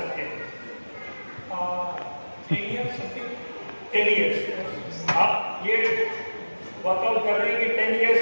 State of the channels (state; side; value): inverted; both; correlation -1.00